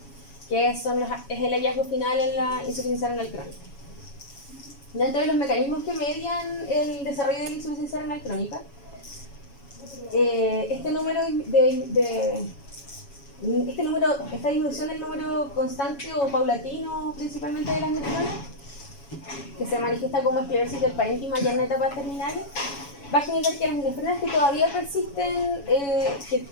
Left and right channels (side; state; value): right; late; 7.1 ms